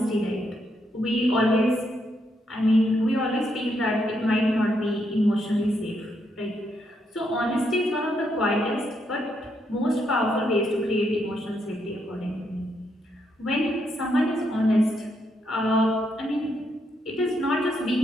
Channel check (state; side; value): normal; both; correlation 0.78